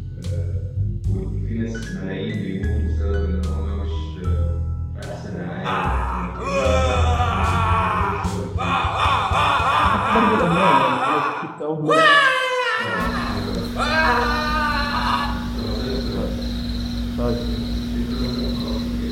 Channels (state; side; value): identical; both; correlation 1.00